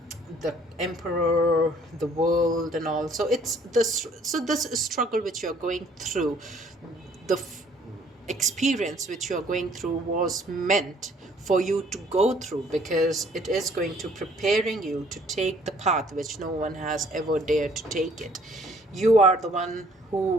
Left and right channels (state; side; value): normal; both; correlation 0.60